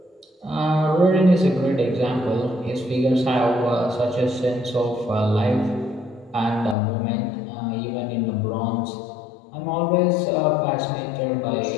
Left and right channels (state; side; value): drops out; right; at 6.8 s